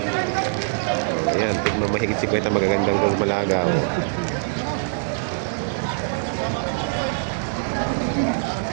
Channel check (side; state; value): left; silent; digital silence